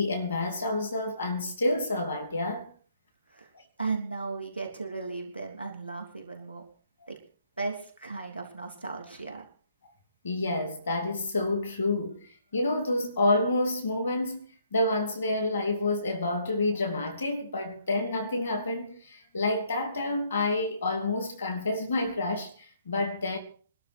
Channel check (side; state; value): both; inverted; correlation -0.69